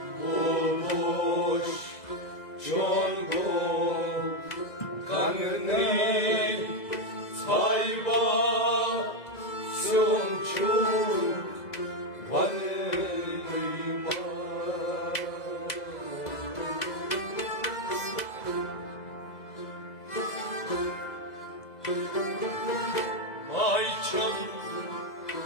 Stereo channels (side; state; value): right; late; 2.0 ms